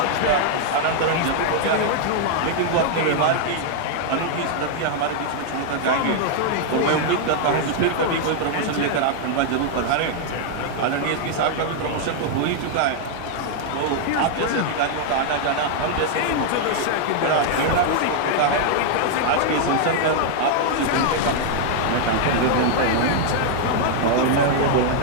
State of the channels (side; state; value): both; different; correlation 0.00